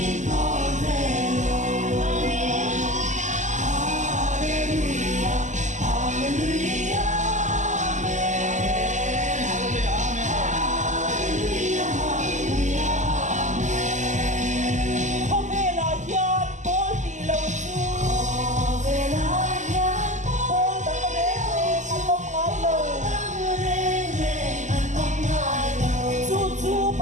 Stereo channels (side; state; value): left; late; 0.35 ms